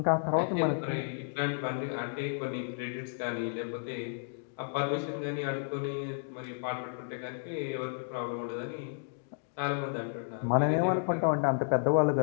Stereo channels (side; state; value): right; silent; digital silence